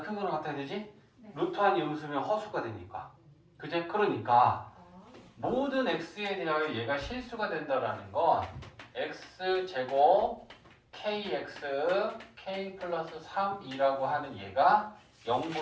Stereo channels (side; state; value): both; identical; correlation 1.00